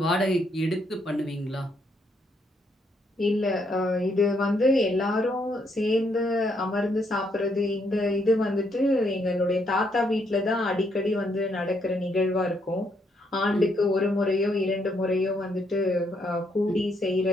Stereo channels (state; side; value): normal; both; correlation 0.74